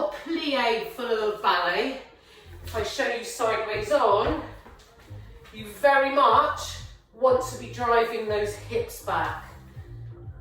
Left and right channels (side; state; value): both; identical; correlation 1.00